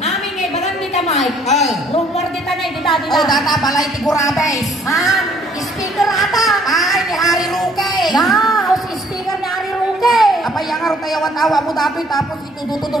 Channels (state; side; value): normal; both; correlation 0.62